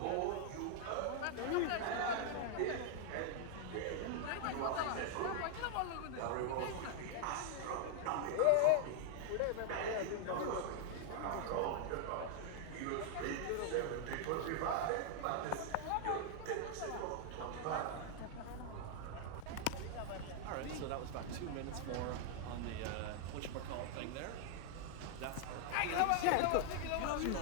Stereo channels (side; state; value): both; different; correlation 0.00